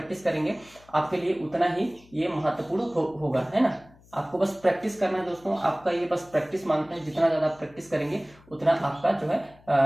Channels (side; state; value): left; noise; hum, 27 dB below the sound